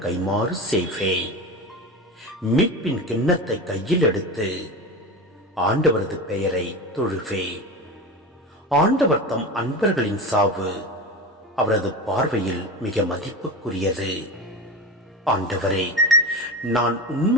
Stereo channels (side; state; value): both; normal; correlation 0.25